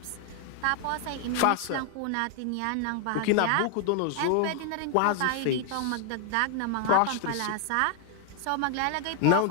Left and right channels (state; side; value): different; both; correlation 0.00